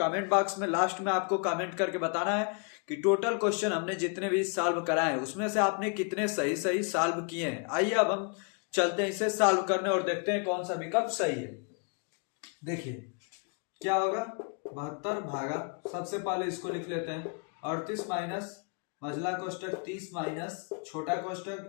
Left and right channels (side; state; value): right; quieter; 38.4 dB